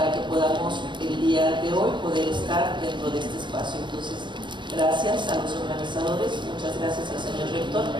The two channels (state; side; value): late; left; 0.22 ms